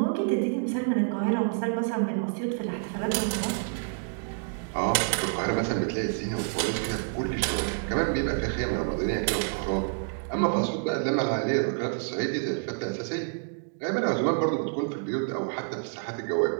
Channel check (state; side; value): silent; left; 59 dB below the other